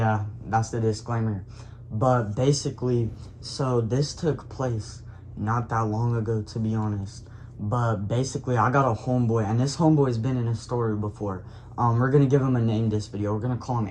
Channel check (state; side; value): identical; both; correlation 1.00